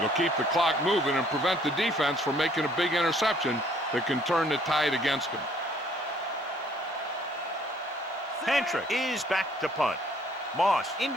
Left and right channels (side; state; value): both; normal; correlation 0.61